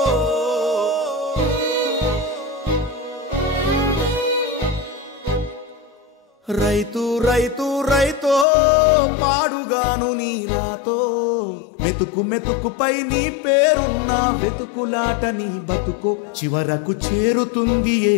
రైతు రైతు రైతో పాడుగాను నీ రాతో, మెతుకు మెతుకుపై నీ పేరున్న వెతుకులాట నీ బతుకో, చివరకు చేరుతుంది ఏ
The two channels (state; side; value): drops out; right; at 8.5 s